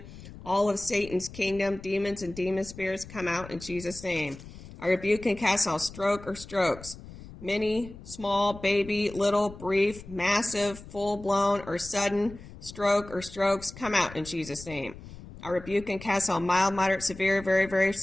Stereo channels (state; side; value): noise; left; rumble, 16 dB below the sound